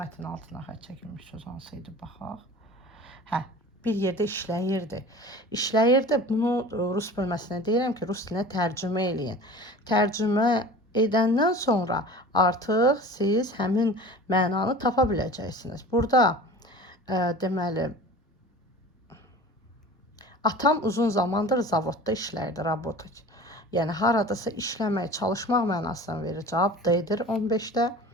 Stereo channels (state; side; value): normal; both; correlation 0.39